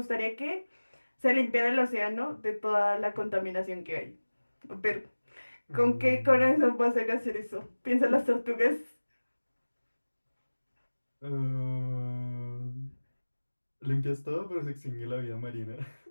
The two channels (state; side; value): inverted; both; correlation -1.00